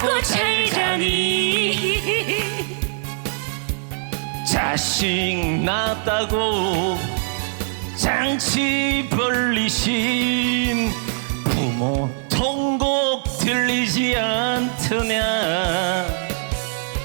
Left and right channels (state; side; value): silent; left; 61 dB below the other